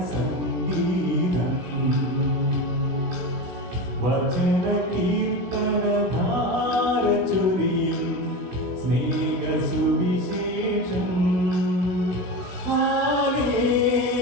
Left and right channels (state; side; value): late; left; 16 ms